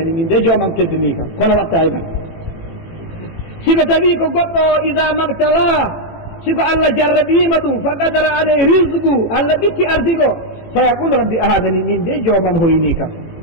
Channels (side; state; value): right; late; 18 ms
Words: min de jomam teddini kam kono watta e man siko tawi ko goɗɗo ida mabtalah siko allah jarraɓima ɗum fa qadara alay risgu allah ɓitti ardigo fa yaqudu rabbi ahanani min de jomam hoyni kam